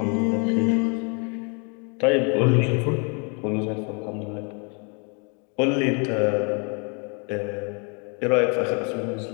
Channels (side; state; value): right; quieter; 35.8 dB